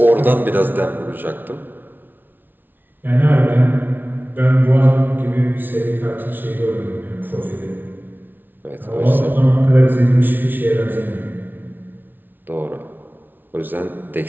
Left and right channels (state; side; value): late; left; 0.092 ms